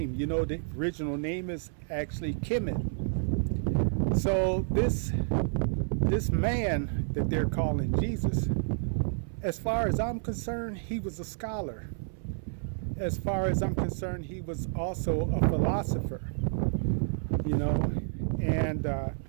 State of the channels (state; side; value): silent; left; 58 dB below the other